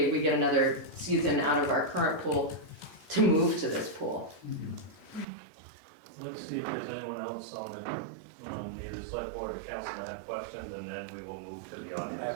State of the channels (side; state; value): left; drops out; at 5.2 s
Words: we get another season out of our current pool to move to this pool. Let's see if there's anyone else on the select board or council that have questions, and then we will move to the I